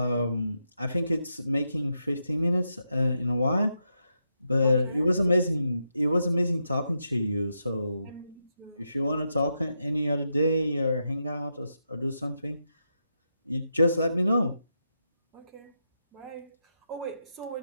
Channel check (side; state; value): both; inverted; correlation -0.84